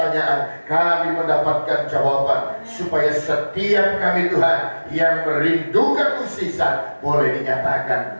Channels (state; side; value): inverted; both; correlation -1.00